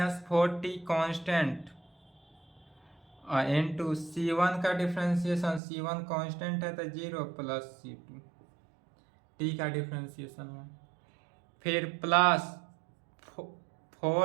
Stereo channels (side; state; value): left; drops out; at 5.6 s